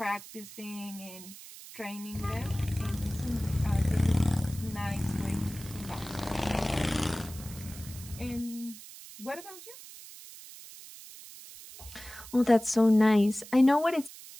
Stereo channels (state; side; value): noise; right; hiss, 16 dB below the sound